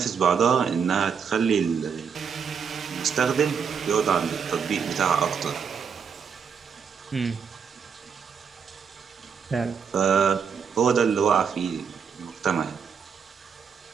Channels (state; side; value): quieter; left; 6.6 dB